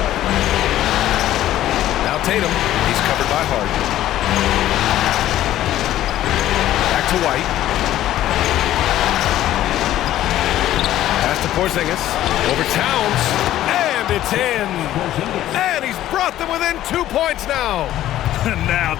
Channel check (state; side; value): quieter; right; 13.4 dB